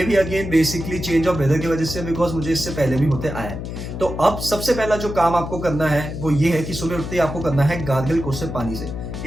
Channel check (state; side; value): noise; left; hum, 7 dB below the sound